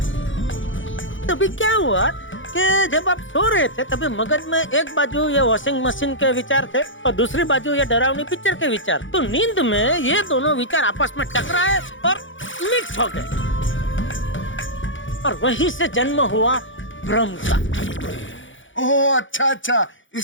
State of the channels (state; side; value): late; right; 0.56 ms